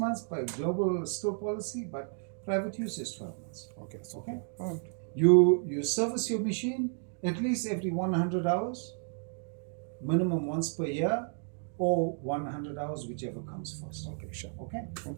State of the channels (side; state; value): left; silent; 56 dB below the other